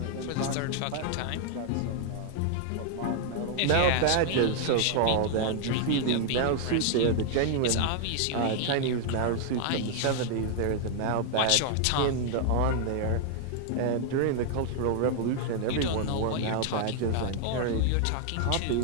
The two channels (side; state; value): both; different; correlation 0.00